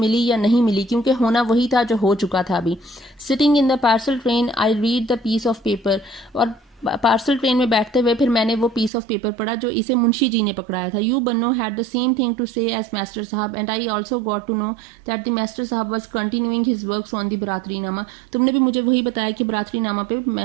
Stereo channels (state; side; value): drops out; left; at 8.9 s